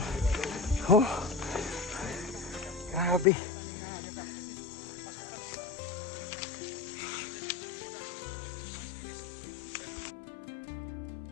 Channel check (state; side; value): drops out; right; at 3.2 s